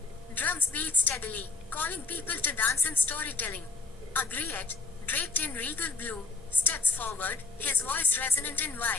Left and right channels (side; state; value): right; quieter; 4.2 dB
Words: Drums beat steadily, calling people to dance and storytelling. A griot, draped in regal blue, steps forward, his voice resonant and